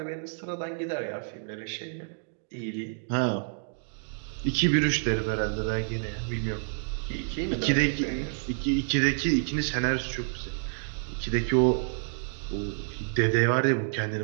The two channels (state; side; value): silent; left; digital silence